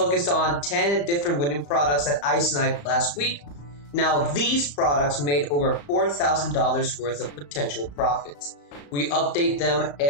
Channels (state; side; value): late; right; 35 ms